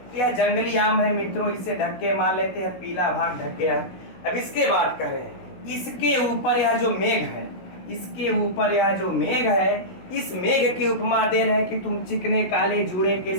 यह जंगली आम है मित्रों, इसे ढक के मान लेते हैं, पीला भाग ढक गया। अब इसके बाद कह रहे हैं, इसके ऊपर यह जो मेघ है, इसके ऊपर यह जो मेघ है, इस मेघ की उपमा दे रहे हैं कि तुम चिकने काले जूड़े के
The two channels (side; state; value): right; late; 16 ms